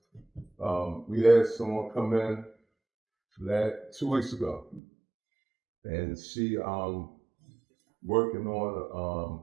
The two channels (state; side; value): drops out; left; at 4.8 s